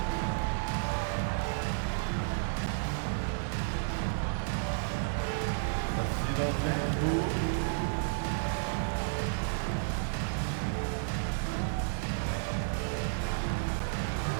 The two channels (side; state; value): left; silent; digital silence